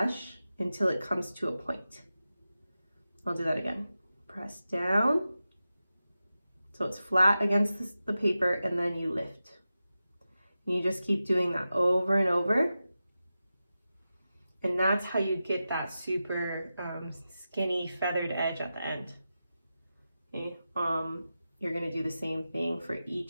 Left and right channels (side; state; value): both; inverted; correlation -0.92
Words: until it comes to a point. I'll do that again. Press down. So it's flat against the paper, and then you lift. And you just keep doing that over and over. And that's how you get that super skinny feathered edge at the end. Okay. You're gonna do the same thing for